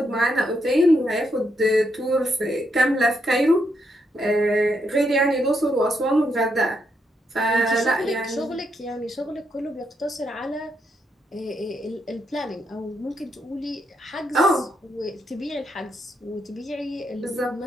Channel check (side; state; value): both; normal; correlation 0.79